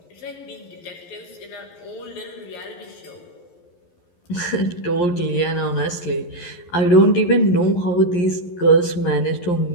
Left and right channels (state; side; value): late; right; 11 ms